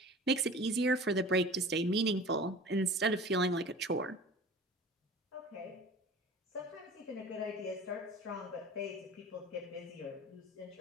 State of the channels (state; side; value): normal; both; correlation 0.40